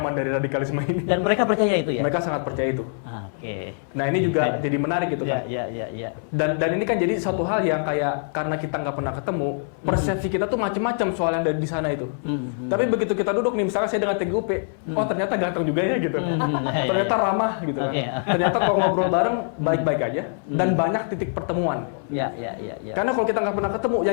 dari radikalisme ini. Dan mereka percaya itu ya? Mereka sangat percaya itu. Oke. Nah ini juga jadi menarik gitu kan. Iya. Dan ini kan jadi satu hal yang kayak karena kita nggak pernah ketemu, persepsi kita tuh macam-macam soal yang dari di sana itu. Tapi begitu kita duduk nih, misalnya saya dengan TGUP, oh ternyata ganteng juga ya gitu. Ternyata ramah gitu. Ternyata kalau ngobrol bareng baik-baik aja dan banyak titik pertemuan. Iya. Karena kalau kita nggak pernah ketemu,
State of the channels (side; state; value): right; silent; 63 dB below the other